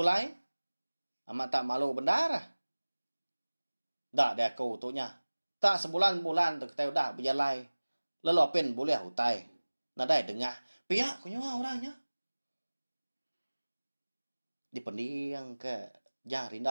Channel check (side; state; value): both; inverted; correlation -1.00